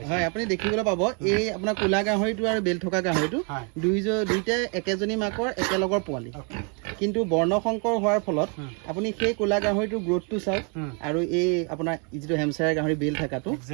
দেখিবলৈ পাব এই আপোনাৰ ক'লা গাহৰিটো আৰু বেল থকা গাহৰিটো দুইটাই একেজনী মাকৰ একেলগৰ পোৱালি কিন্তু বৰ্ণশংকৰ হোৱাৰ ফলত আপুনি সেই ক'লা গাহৰিটোৰ গ্ৰোথটো চাওক আৰু এই আপোনাৰ যিটো হেমচায়াৰ গাহৰি বেল থকাটো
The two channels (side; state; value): left; quieter; 36.6 dB